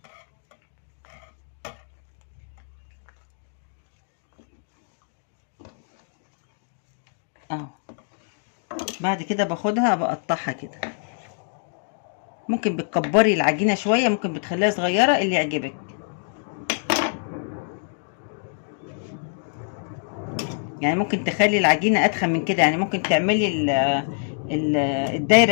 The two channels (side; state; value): right; silent; digital silence